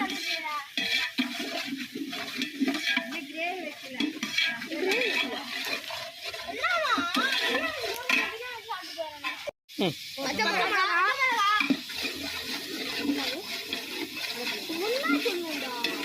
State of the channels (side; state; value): both; identical; correlation 1.00